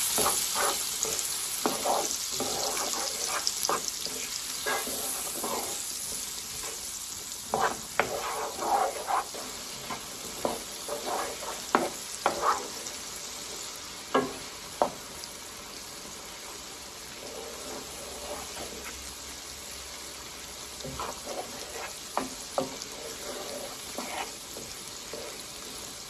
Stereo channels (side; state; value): both; identical; correlation 1.00